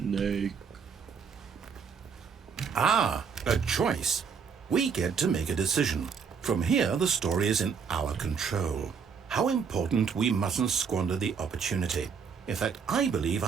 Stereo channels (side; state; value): left; quieter; 6.2 dB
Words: Ah, a choice. We get to make a decision. From here, the story is in our control. How important we mustn't squander the opportunity. In fact, I believe